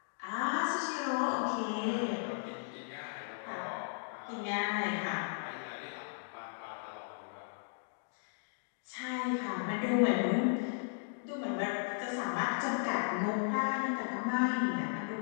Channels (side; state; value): right; silent; digital silence